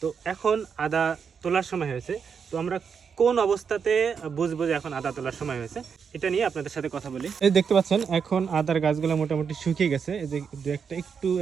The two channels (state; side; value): quieter; left; 6.5 dB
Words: এখন আদা তোলার সময় হয়েছে, তো আমরা কোন অবস্থাতে বুঝবো যে এখন আদা তোলার সময় হয়েছে এটা নিয়ে আপনাদের সাথে কথা বলি। এই দেখতে পাচ্ছেন এখন আদার গাছগুলো মোটামুটি শুকিয়ে গেছে, এই যে দু একটা একটু